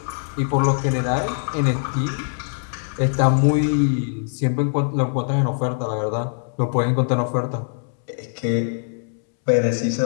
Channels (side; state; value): right; silent; 64 dB below the other